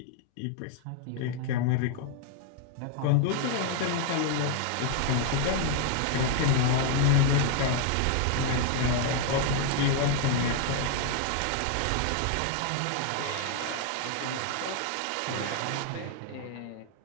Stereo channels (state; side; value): different; both; correlation 0.00